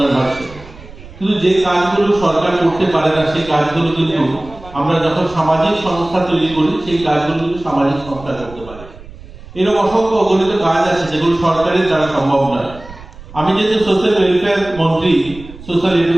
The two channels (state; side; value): noise; right; rumble, 17 dB below the sound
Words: হচ্ছে। কিন্তু যে কাজগুলো সরকার করতে পারে না সেই কাজগুলো কিন্তু আমরা যখন সামাজিক সংস্থা তৈরি করি সেই কাজগুলো কিন্তু সামাজিক সংস্থা করতে পারে। এরকম অসংখ্য অগণিত কাজ আছে যেগুলো সরকারের দ্বারা সম্ভব নয়। আমি যেহেতু সোশ্যাল ওয়েলফেয়ার মন্ত্রী, সোশ্যাল